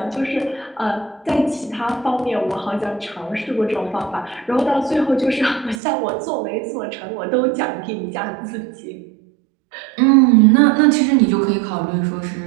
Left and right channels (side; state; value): left; drops out; at 5.8 s